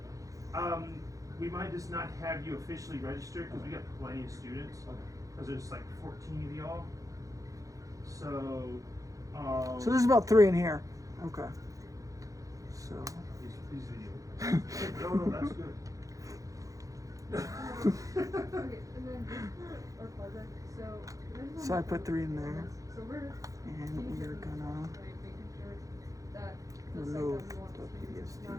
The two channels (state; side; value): late; left; 0.16 ms